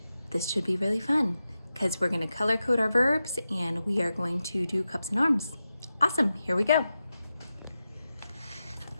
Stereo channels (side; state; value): both; inverted; correlation -0.91